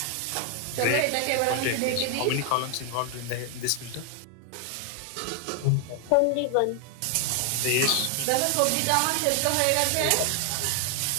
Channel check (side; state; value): both; different; correlation 0.00